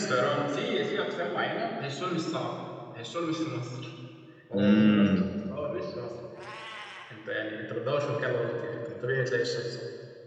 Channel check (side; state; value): both; identical; correlation 1.00